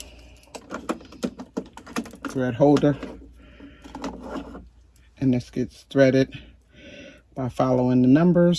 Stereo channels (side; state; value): both; identical; correlation 1.00